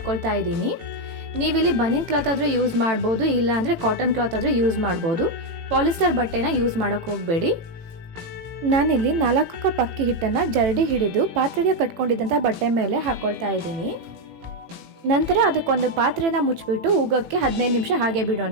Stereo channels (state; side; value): late; left; 18 ms